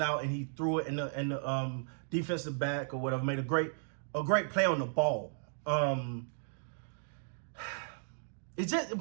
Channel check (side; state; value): left; silent; digital silence